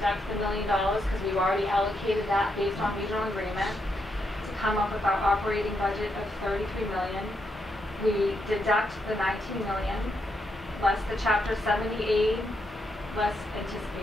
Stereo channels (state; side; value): normal; both; correlation 0.80